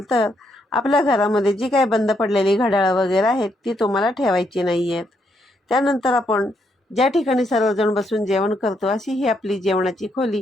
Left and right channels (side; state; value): both; normal; correlation 0.76